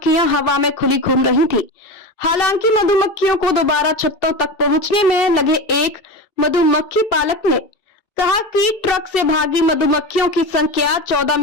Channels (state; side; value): late; right; 2.7 ms